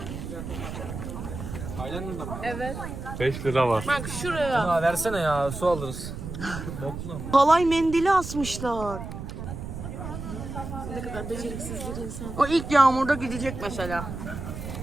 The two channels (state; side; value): noise; right; rumble, 8 dB below the sound